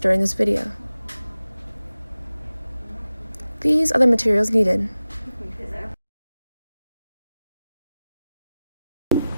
this video. These are the materials needed.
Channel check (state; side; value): inverted; both; correlation -0.96